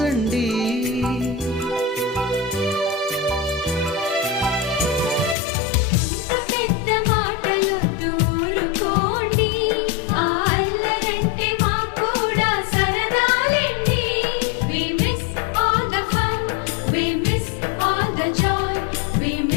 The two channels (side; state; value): right; drops out; at 5.4 s